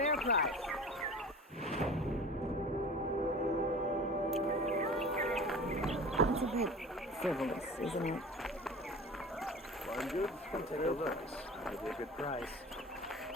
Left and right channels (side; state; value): both; normal; correlation 0.38